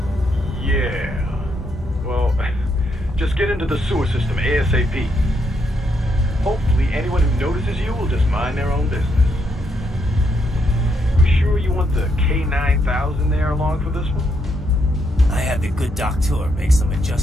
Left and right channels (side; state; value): both; normal; correlation 0.77